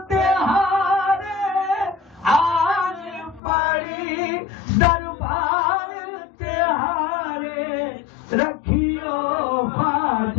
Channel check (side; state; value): right; drops out; at 3.4 s